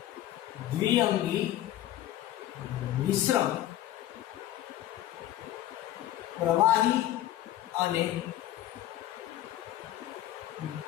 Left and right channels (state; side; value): quieter; right; 13.4 dB